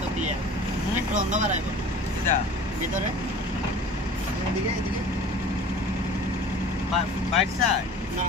ক্লিয়ার একটু অন্ধকার আইবো এটা ভিতরে এদিকে এদিকে বাইট সাইড না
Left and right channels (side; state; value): both; normal; correlation 0.43